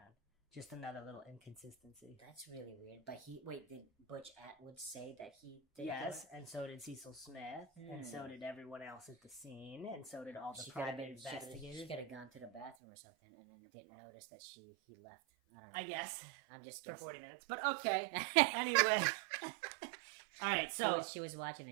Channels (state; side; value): drops out; left; at 12.8 s